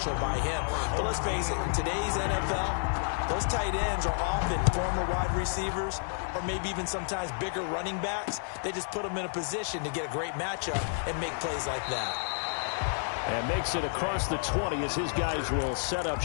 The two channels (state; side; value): silent; right; digital silence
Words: by him. But let's face it, in today's NFL, those tight ends are often former wide receivers or maybe even sometimes bigger running backs. They just put them in a position to get a great matchup and make plays like that. And makes it across the 20 as his guys will set up